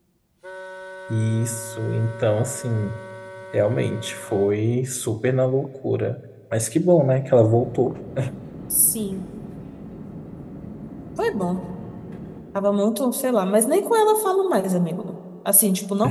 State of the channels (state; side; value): identical; both; correlation 1.00